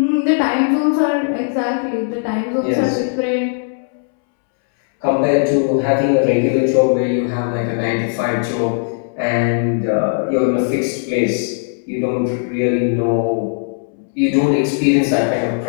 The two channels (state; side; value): silent; right; 68 dB below the other